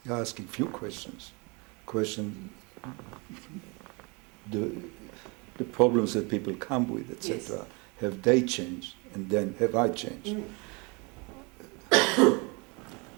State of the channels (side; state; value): left; quieter; 29.4 dB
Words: You're asking few questions. Question the the problems that people come with, etc. Yes. Have they changed, and then have I changed?